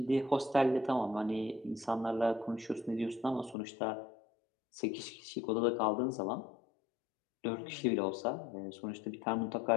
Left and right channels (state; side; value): drops out; right; at 3.6 s